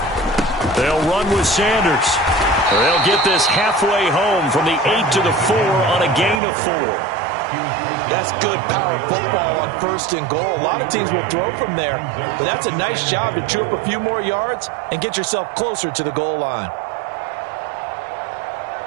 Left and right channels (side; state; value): left; drops out; at 6.4 s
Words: They'll run with Sanders. They'll get this halfway home from the 8 to the 4 on a gain of 4. That's good power football on 1st and goal. A lot of teams will throw from there, but that's a nice job to chew up a few more yards and get yourself closer to the goal line.